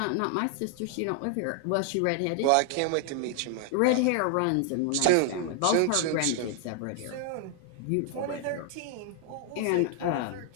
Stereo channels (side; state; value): both; different; correlation 0.00